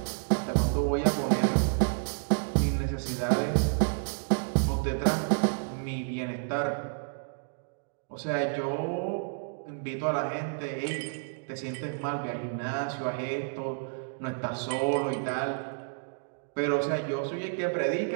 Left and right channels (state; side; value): silent; left; digital silence